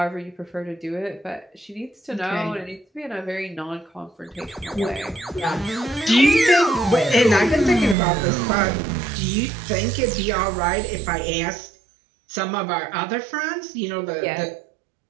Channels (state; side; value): drops out; left; at 8.0 s